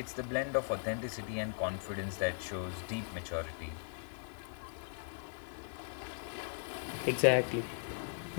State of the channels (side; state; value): right; silent; 52 dB below the other